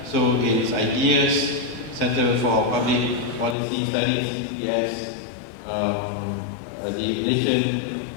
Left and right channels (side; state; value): right; drops out; at 3.6 s